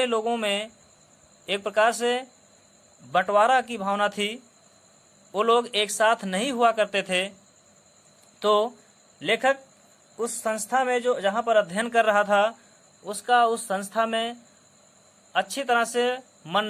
लोगों में एक प्रकार से बंटवारा की भावना थी। वो लोग एक साथ नहीं हुआ करते थे। तो लेखक उस संस्था में जो जहाँ पर अध्ययन कर रहा था, उसका उस संस्था में अच्छी तरह से मन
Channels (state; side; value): identical; both; correlation 1.00